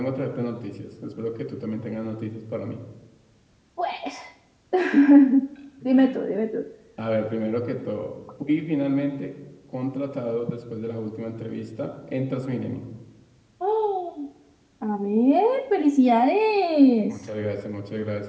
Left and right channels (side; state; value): both; identical; correlation 1.00